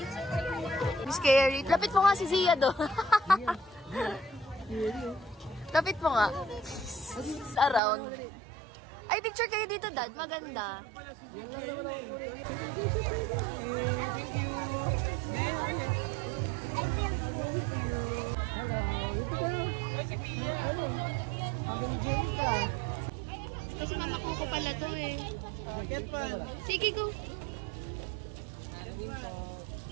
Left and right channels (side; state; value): left; drops out; at 7.8 s